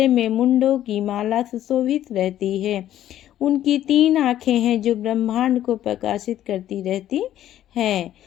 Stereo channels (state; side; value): quieter; right; 12.2 dB